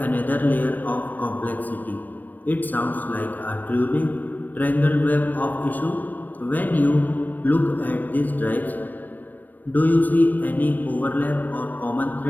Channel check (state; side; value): late; right; 0.088 ms